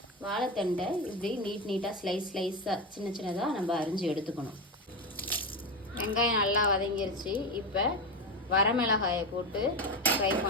வாழைத்தண்டை இப்படி நீட்டாக ஸ்லைஸாக சின்னதாக நம்ம அரிஞ்சு எடுத்துக்கணும். வெங்காயம் நல்லா வதங்கிருச்சு. இப்போ வரமிளகாயை போட்டு ஃப்ரை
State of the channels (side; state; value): both; normal; correlation 0.17